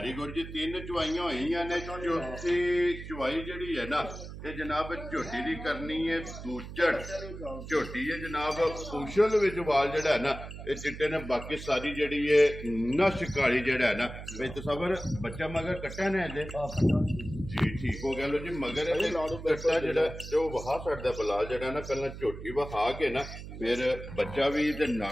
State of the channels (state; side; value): noise; right; hum, 11 dB below the sound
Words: गुड जी। तीन चुवाइयां होईयां ने, चौथी चुवाई जिहड़ी है ना ये जनाब झोटी दी करनी है दूजड़ झोटी है जनाब उछल विच वाल जिहड़ा है ना ये चिट्टे ने। बाकी सारी जिहड़ी है नश काली जिहड़ा है ना भाई तसव्वुर बच्चा मगर कट्टा ने जी ठीक हो गया। लो जी मगर कट्टा जिहड़ा ते वहा छड्डदा बलाल जिहड़ा ना पहला झोटी वहा के ना फिर बच्चा भी ते